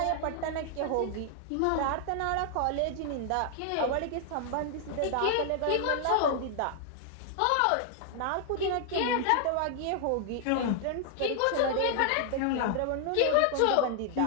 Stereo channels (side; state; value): both; different; correlation 0.00